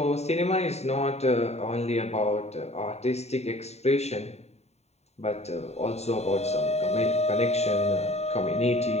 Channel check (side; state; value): right; late; 0.31 ms